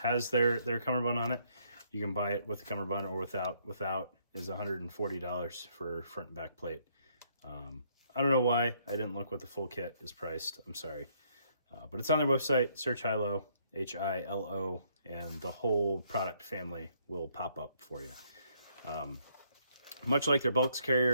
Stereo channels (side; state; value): both; inverted; correlation -0.69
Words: their cummerbund on it. You can buy it with the cummerbund or without. Without is $140 for front and back plate. I don't know why I didn't look what the full kit is priced. I'm sorry. But it's on their website. Search Hilo, Hilo, and the whole product family will pop up for you. Much like their bulks